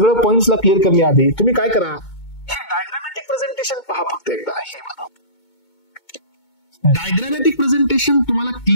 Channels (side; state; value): right; late; 2.2 ms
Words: पॉइंट्सला क्लिअर करण्याआधी तुम्ही काय करा, हे डायग्रामॅटिक प्रेझेंटेशन पहा फक्त एकदा. हे मला डायग्रामॅटिक प्रेझेंटेशन तुम्हाला